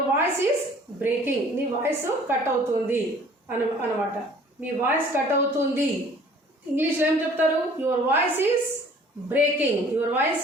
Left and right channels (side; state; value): both; normal; correlation 0.52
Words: voice is breaking. నీ వాయిస్ కట్ అవుతుంది అనమాట. మీ వాయిస్ కట్ అవుతుంది. ఇంగ్లీష్లో ఏం చెప్తారు? Your voice is breaking. Your voice